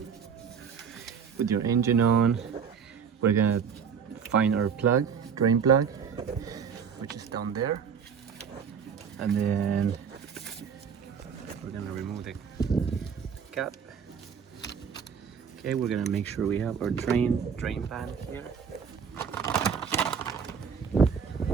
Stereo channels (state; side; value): quieter; left; 6.8 dB